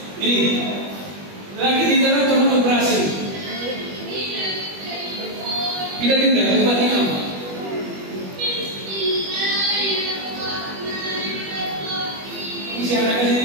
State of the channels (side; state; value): left; late; 21 ms